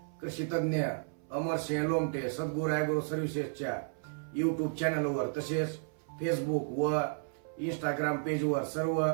कृषी तज्ञ अमरसिंह लोमटे सद्गुरू ॲग्रो सर्व्हिसेसच्या युट्यूब चॅनलवर तसेच फेसबुक व इंस्टाग्राम पेजवर सर्व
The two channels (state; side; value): silent; left; 56 dB below the other